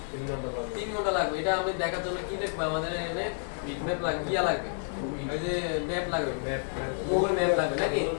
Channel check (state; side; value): silent; right; digital silence